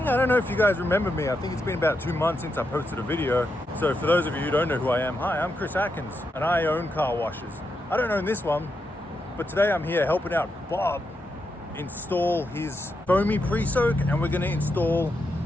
don't know if you guys remember me. I think it's been about 2 months since I posted a video. So for those of you who don't know who I am, hi, I'm Chris Atkins and I own car washes. I don't own this one, but today I'm here helping out Bob install his foamy pre-soak, and we're gonna install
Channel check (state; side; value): normal; both; correlation 0.84